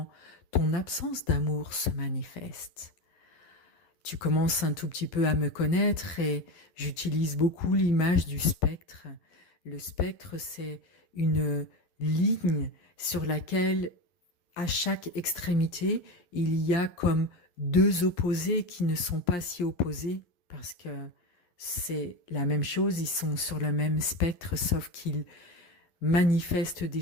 ton absence d'amour se manifeste. Tu commences un tout petit peu à me connaître et j'utilise beaucoup l'image du spectre. Le spectre, c'est une ligne sur laquelle, à chaque extrémité, il y a comme deux opposés qui ne sont pas si opposés parce que c'est la même chose, ils sont sur le même spectre, sauf qu'ils manifestent des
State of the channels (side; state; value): right; late; 11 ms